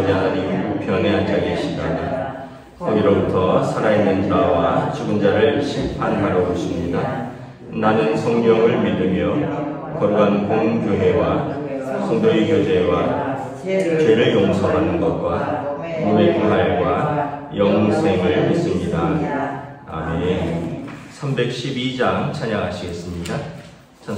하나님 우편에 앉아 계시다가 거기로부터 살아있는 자와 죽은 자를 심판하러 오십니다. 나는 성령을 믿으며 거룩한 공교회와 성도의 교제와 죄를 용서받는 것과 몸의 부활과 영생을 믿습니다. 아멘. 312장 찬양하시겠습니다.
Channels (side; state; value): both; identical; correlation 1.00